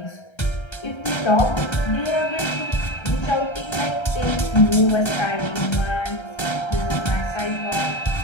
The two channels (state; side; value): late; right; 1.3 ms